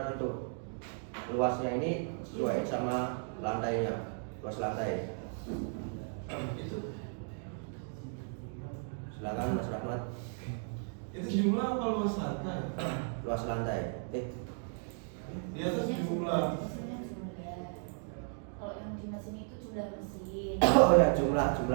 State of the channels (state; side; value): silent; left; 55 dB below the other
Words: untuk luasnya ini sesuaiin sama lantainya, luas lantai. Silakan Mas Rahmat. Itu jumlah apa luas lantai? Luas lantai. Di atas jumlah. Kalau yang di mesin itu jumlah mesin. Oh ya, jumlah